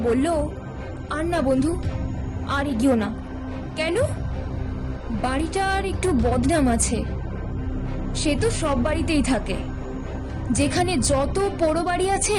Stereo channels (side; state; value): both; identical; correlation 1.00